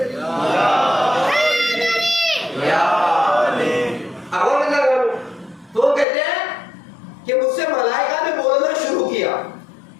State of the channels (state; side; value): drops out; right; at 6.1 s